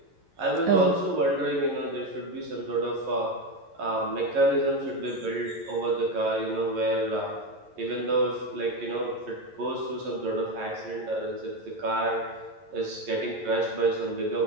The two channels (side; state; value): left; late; 11 ms